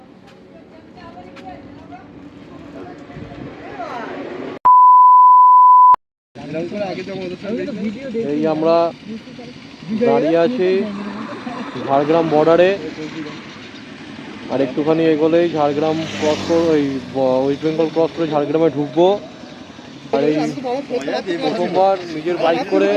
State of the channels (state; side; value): identical; both; correlation 1.00